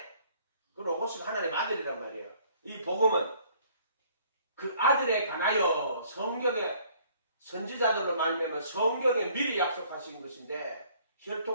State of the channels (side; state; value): both; inverted; correlation -0.59